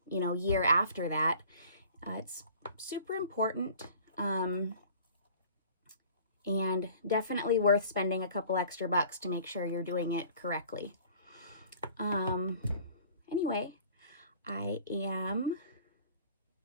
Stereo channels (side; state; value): both; inverted; correlation -0.48